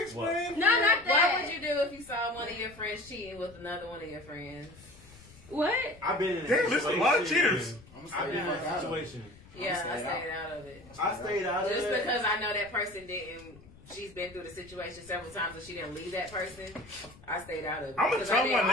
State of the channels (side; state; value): left; noise; rumble, 22 dB below the sound